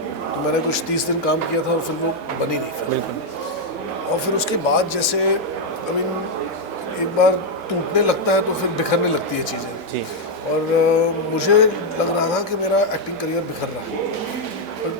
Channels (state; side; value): normal; both; correlation 0.01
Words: तो मैंने कुछ 30 दिन काम किया था और फिर वो बनी नहीं फिर। बिल्कुल। और फिर उसके बाद जैसे एक बार टूटने लगता है तो फिर बिखरने लगती है चीज़ें। जी। और मुझे लग रहा था कि मेरा एक्टिंग करियर बिखर रहा है। पर